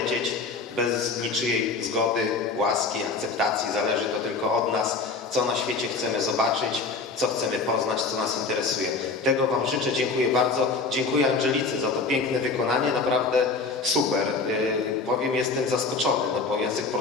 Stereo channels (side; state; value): right; quieter; 4.2 dB